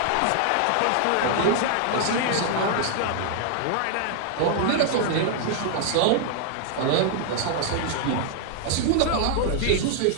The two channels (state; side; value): different; both; correlation 0.00